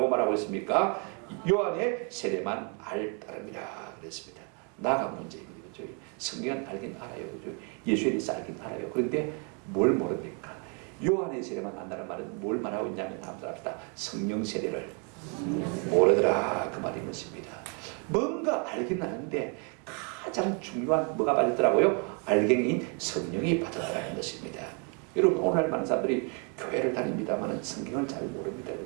말하고 있습니까? 요한의 세례만 알 따름이라 그랬습니다. 나가 문제입니다. 그죠? 성경은 알긴 알아요. 그죠? 예수에 대해서 알긴 알아요. 그런데 뭘 모릅니까? 요한의 세례만 안다는 말은 뭘 말하고 있냐면 다음과 합시다. 성령 세례를 모르더라 그 말인 것입니다. 뭔가 알긴 아는데 가장 중요한 뭐가 빠졌더라고요? 알갱이인 성령이 빠졌다는 것입니다. 여러분 오늘날 많은 사람들이 교회를 다닙니다만 성경을 잘 모릅니다.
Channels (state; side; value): quieter; left; 36.4 dB